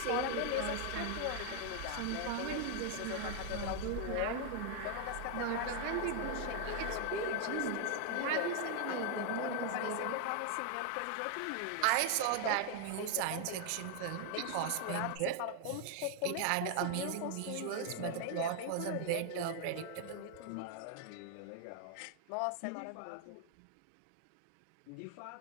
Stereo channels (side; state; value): both; different; correlation 0.00